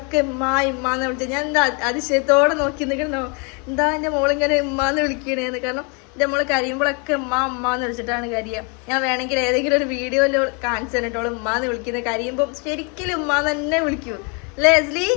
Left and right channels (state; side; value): quieter; right; 34.2 dB